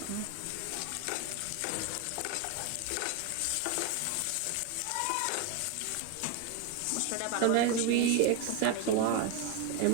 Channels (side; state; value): both; different; correlation 0.01